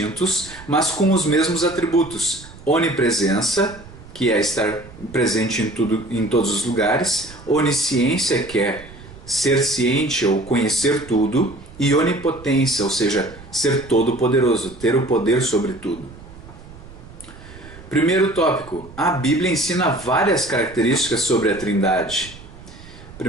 mas com os mesmos atributos: onipresença, que é estar presente em todos os lugares; onisciência, que é ser ciente ou conhecer tudo; e onipotência, ou seja, ser todo-poderoso, ter o poder sobre tudo. Primeiro tópico, a Bíblia ensina várias características sobre a Trindade.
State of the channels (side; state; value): right; noise; rumble, 18 dB below the sound